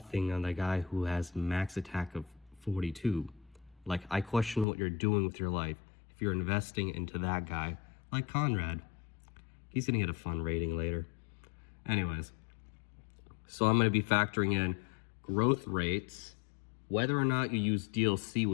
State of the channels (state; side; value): drops out; right; at 4.7 s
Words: on the guy who has max attack of 42. Like, I question what you're doing with your life if you're investing into that guy, like Conrad. He's gonna get a fun rating later. Anyways, so I'm gonna be factoring in growth rates, whether or not you use DLC